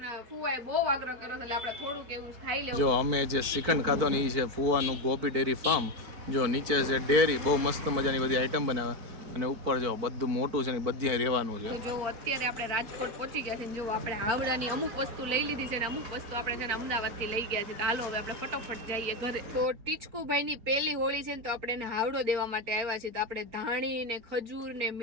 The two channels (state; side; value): late; left; 4.5 ms